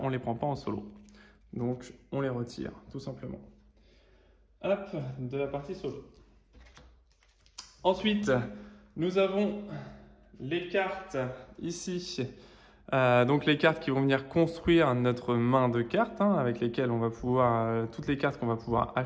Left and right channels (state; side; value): identical; both; correlation 1.00